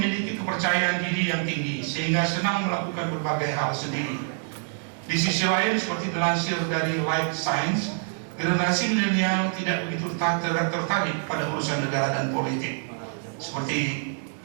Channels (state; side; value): silent; left; 61 dB below the other